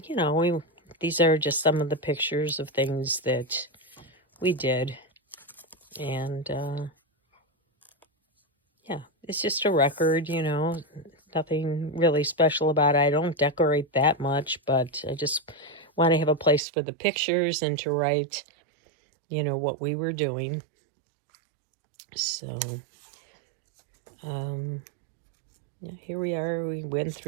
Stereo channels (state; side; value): drops out; left; at 16.6 s